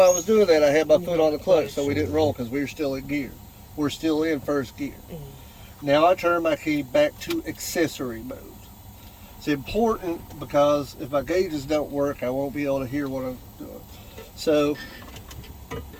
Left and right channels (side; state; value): both; identical; correlation 1.00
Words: I was doing that, I had my foot on the clutch so we didn't roll because we were still in gear. We're still in first gear. Now I turn my key back to accessory mode. It's important because if my gauges don't work, I won't be able to hear what I'm doing. So,